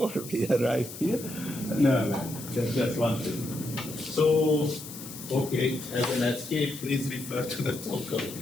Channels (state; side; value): noise; left; hiss, 12 dB below the sound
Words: we arrived here. No, that's one thing. So, okay, as an escape, please refer to the talk of